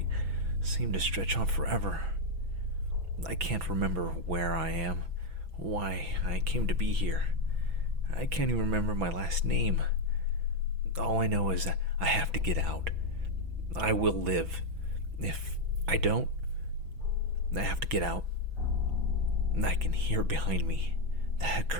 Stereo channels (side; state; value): left; late; 6.0 ms